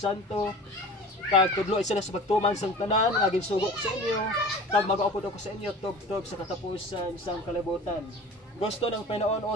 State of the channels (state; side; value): normal; both; correlation 0.39